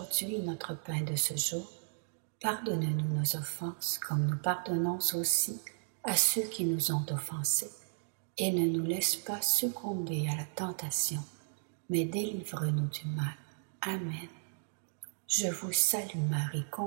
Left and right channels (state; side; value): silent; left; digital silence